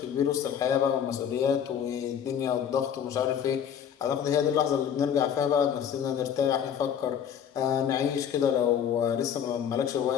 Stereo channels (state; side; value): quieter; right; 8.6 dB